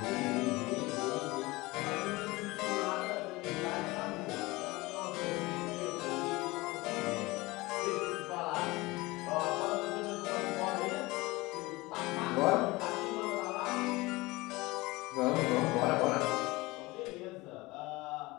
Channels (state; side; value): quieter; right; 21.7 dB